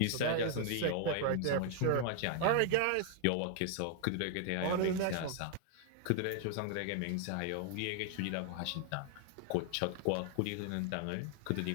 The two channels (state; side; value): different; both; correlation 0.00